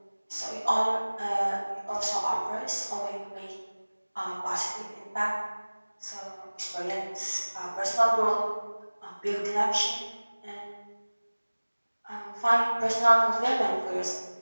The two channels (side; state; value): both; inverted; correlation -1.00